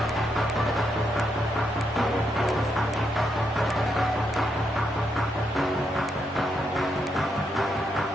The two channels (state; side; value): normal; both; correlation 0.79